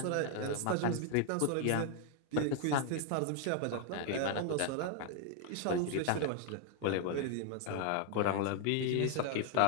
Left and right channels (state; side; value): different; both; correlation 0.00